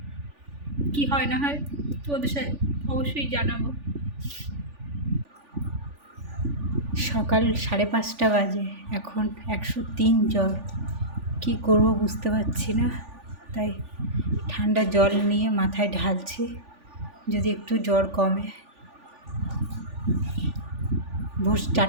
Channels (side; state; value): left; late; 3.4 ms